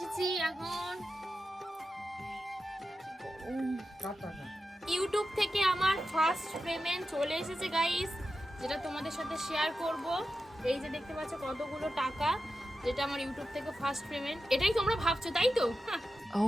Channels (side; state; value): both; normal; correlation 0.90